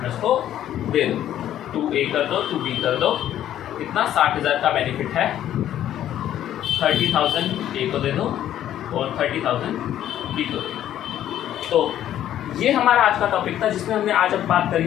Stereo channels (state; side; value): quieter; right; 11.6 dB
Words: को दे दो। 2A कर दो, 2B कर दो। कितना? 60,000 का बेनिफिट है। 30,000 A को दे दो और 30,000 B को दे दो। तो ये हमारा आज का टॉपिक था जिसमें हमने आज अब बात